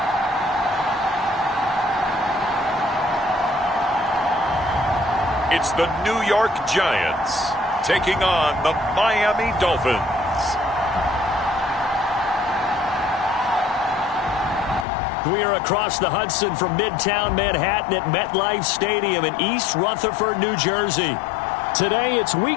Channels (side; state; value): right; drops out; at 14.9 s